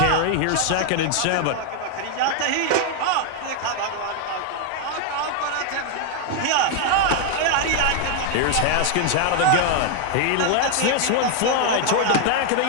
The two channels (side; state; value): both; different; correlation 0.00